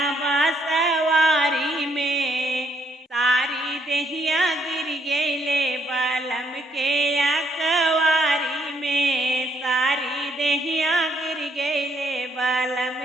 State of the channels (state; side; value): normal; both; correlation 0.71